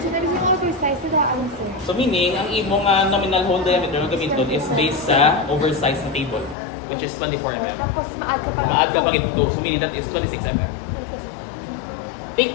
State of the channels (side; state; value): right; drops out; at 6.6 s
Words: na yung oversize na daan, sir. So meaning, ang imong nominal hole diameter na gamiton is based sa oversized na table, which is 24 mm. Tapos maad ka pa. Maad ka pa ito. So meaning that is 26 mm. Take